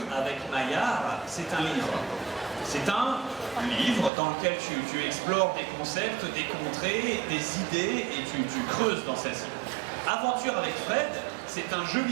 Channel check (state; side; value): drops out; left; at 4.1 s